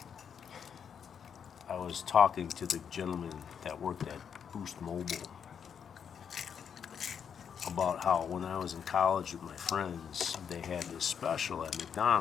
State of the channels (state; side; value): quieter; right; 7.5 dB